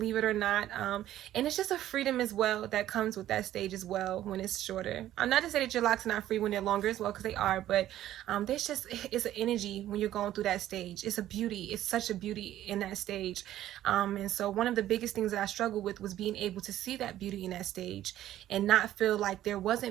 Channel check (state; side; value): quieter; left; 13.0 dB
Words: it or not. And it's just a freedom as well that comes with that stage as well when it's shorter. I'm not to say that your locks are not free when they're longer as well, because they are, but it's an energy when you're going through that stage. It's a beauty. It's such a beauty in that stage. And so one of the biggest things that I struggled with was being able to see that beauty in that stage and not feel like there